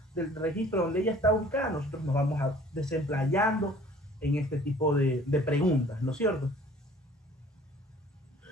registro donde ella está ubicada, nosotros nos vamos a desemplayando en este tipo de preguntas, ¿no es cierto?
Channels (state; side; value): normal; both; correlation 0.52